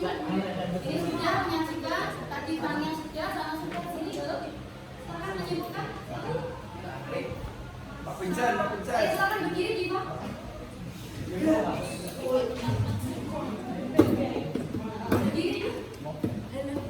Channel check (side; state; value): both; identical; correlation 1.00